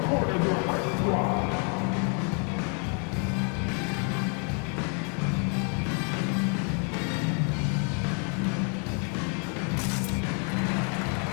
corner of the right.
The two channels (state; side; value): quieter; right; 39.0 dB